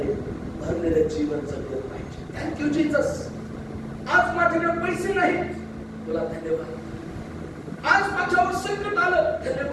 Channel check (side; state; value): both; identical; correlation 1.00